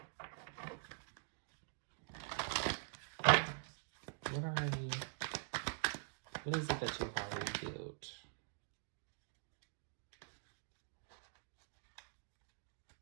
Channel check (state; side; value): silent; left; digital silence